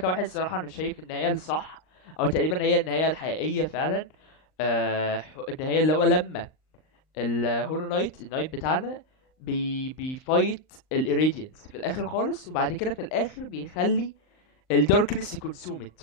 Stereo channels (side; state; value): right; late; 38 ms